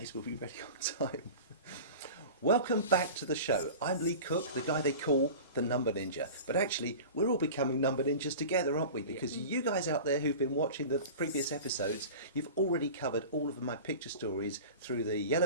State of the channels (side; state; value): both; inverted; correlation -0.35